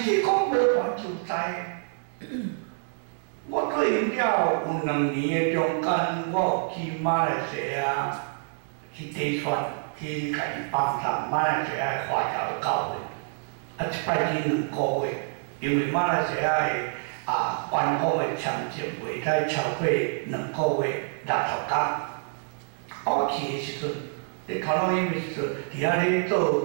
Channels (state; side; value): silent; left; 60 dB below the other